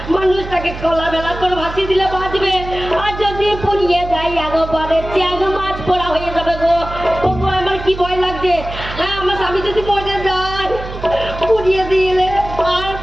মানুষটাকে কলা বেলা করে ভাসিয়ে দিলে বাঁচবে, আর যদি পুড়িয়ে যায় একবারে চ্যাং মাছ পোড়া হয়ে যাবে গো। ওগো আমার কি ভয় লাগছে, হ্যাঁ আমার স্বামী যদি মরে যায় পুড়িয়ে দিলে আর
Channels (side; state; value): right; noise; hum, 10 dB below the sound